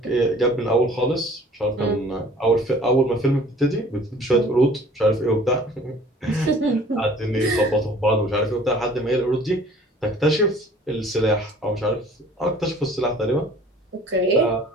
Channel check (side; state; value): both; normal; correlation 0.50